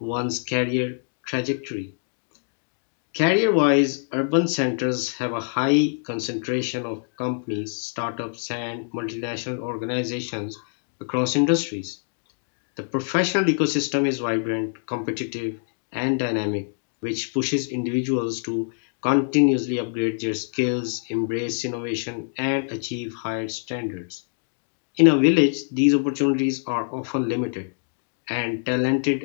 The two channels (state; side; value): silent; right; digital silence